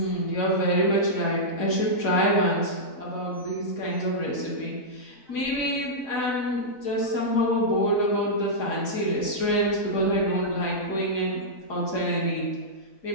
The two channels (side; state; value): right; late; 4.0 ms